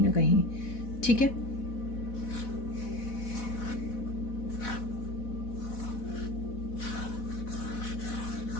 ना कहीं, ठीक है।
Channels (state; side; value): late; right; 4.1 ms